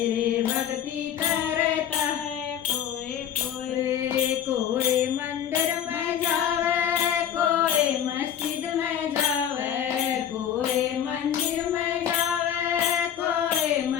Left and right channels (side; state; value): right; quieter; 9.4 dB